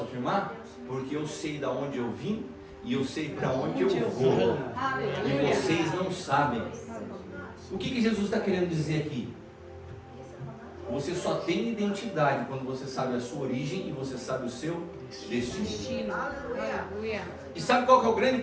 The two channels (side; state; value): both; identical; correlation 1.00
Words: afirmar? Porque eu sei de onde eu vim e eu sei para onde eu vou. E vocês não sabem. O que Jesus está querendo dizer aqui? Você só tem identidade quando você sabe a sua origem e você sabe o seu destino. E sabe qual que é o grande